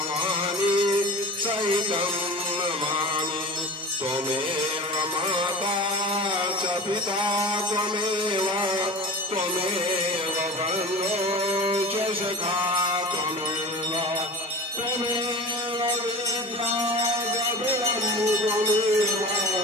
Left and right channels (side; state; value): both; normal; correlation 0.35